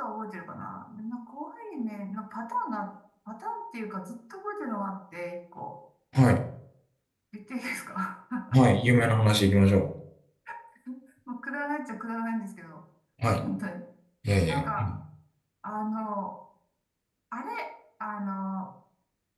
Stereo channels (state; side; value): identical; both; correlation 1.00